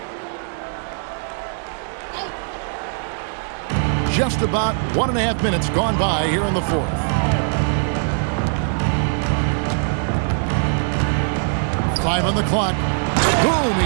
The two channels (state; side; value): silent; left; digital silence